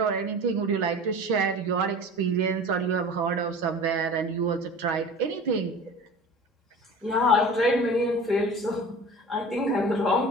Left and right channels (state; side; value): normal; both; correlation 0.38